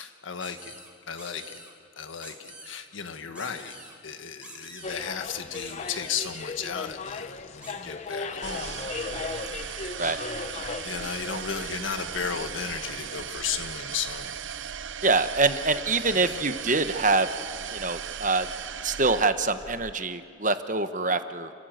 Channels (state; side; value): normal; both; correlation -0.09